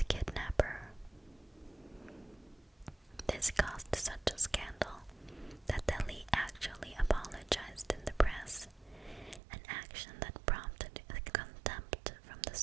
kidnapper. This caused such a scandal that Dalí actually apologized in the press, an action that prompted contempt from the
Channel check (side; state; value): left; drops out; at 9.4 s